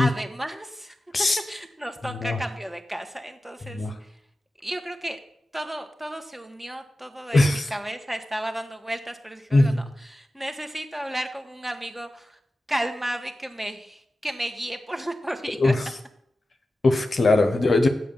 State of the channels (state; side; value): normal; both; correlation 0.94